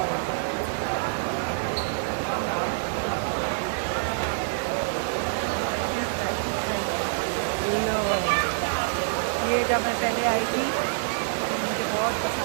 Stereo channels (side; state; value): left; silent; digital silence